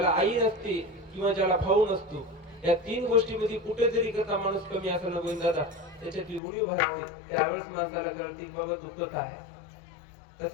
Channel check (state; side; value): drops out; right; at 6.4 s